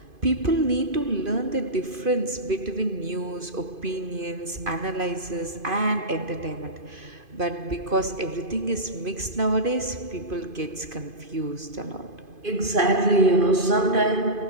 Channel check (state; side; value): late; left; 2.5 ms